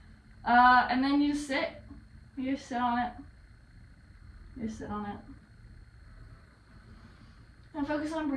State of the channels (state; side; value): identical; both; correlation 1.00